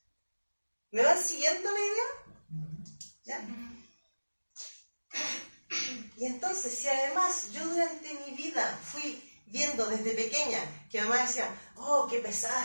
¿Me van siguiendo la idea? ¿Ya? Y entonces, si además yo durante mi vida fui viendo desde pequeña que mamá decía, oh, qué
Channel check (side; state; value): both; inverted; correlation -1.00